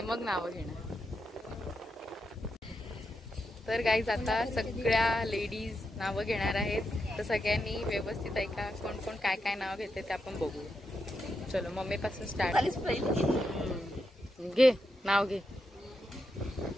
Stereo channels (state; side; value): normal; both; correlation 0.85